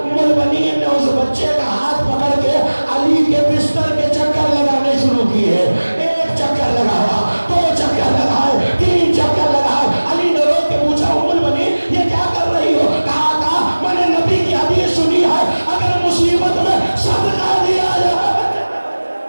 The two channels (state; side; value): inverted; both; correlation -1.00